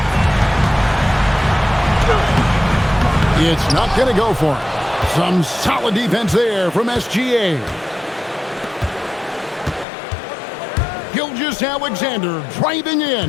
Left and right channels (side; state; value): right; drops out; at 9.9 s